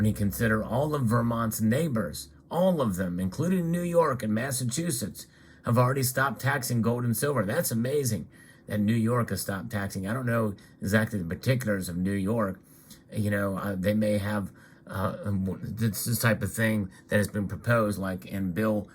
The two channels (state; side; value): identical; both; correlation 1.00